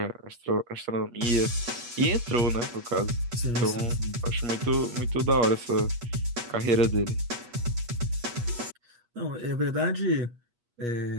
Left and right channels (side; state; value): left; late; 8.4 ms